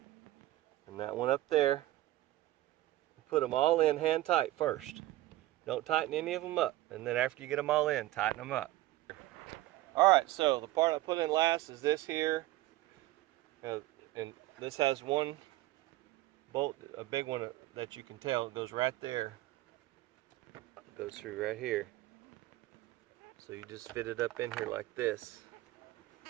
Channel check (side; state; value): left; quieter; 16.5 dB